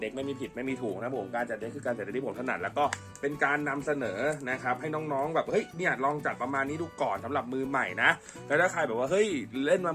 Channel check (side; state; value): both; identical; correlation 1.00